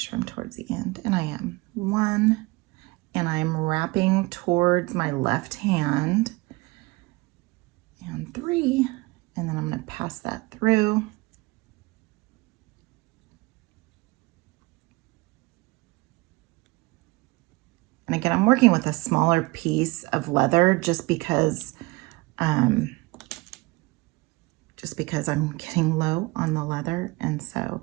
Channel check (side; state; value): left; quieter; 23.6 dB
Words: I'm towards the end, and I am. 1, and I'm wrapping towards my left hand, and 3, and then I'm going to pass that through. And again, I'm working with a smaller piece of leather just because I'm getting low on the leather. And so